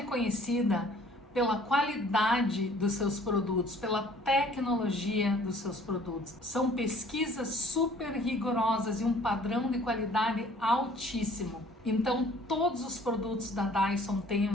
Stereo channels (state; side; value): normal; both; correlation 0.55